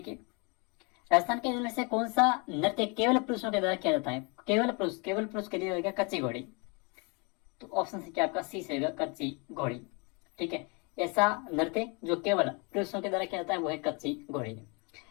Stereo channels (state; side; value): quieter; right; 31.8 dB